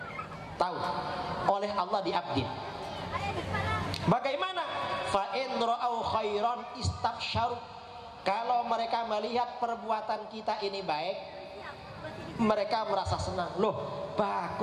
tahu oleh Allah, diupdate. Bagaimana? Fa in ra'au khairan istabsyaru. Kalau mereka melihat perbuatan kita ini baik, mereka merasa senang. Loh,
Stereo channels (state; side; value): identical; both; correlation 1.00